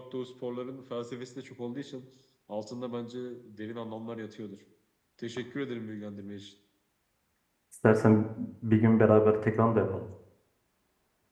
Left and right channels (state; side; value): identical; both; correlation 1.00